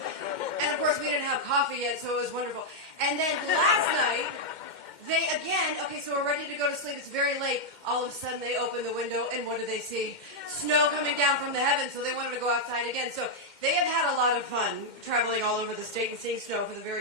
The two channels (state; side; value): late; right; 2.1 ms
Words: And of course, we didn't have coffee yet, so it was wonderful. And then last night, they again, okay, so we're ready to go to sleep. It's very late. All of a sudden, they open the window, and what do they see? Snow coming down from the heavens, so they wanted to go outside again. So they have had a lot of fun traveling all over the state and seeing snow for the